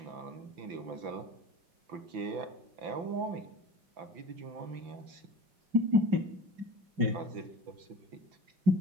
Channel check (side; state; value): left; late; 5.9 ms